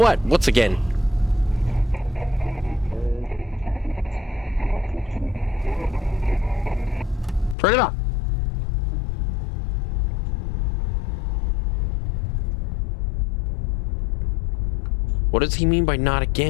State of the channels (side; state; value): right; drops out; at 7.6 s